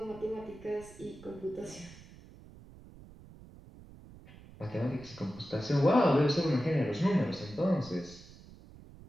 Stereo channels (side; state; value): right; noise; rumble, 19 dB below the sound